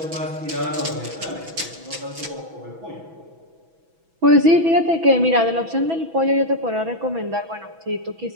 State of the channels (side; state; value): left; late; 6.1 ms